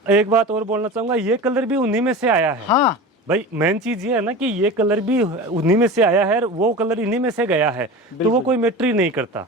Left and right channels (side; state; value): both; normal; correlation 0.31